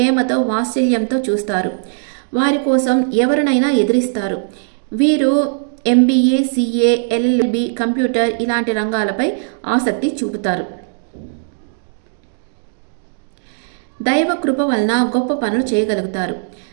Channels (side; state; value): left; silent; digital silence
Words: వాత్సల్యంతో చూస్తారు. వారి కోసం ఎవరినైనా ఎదిరిస్తారు. వీరు MBA, CA, LLB, కంప్యూటర్ ఇలాంటి రంగాలపై ఆసక్తి చూపుతారు. దైవ కృప వలన గొప్ప పనులు చేయగలుగుతారు.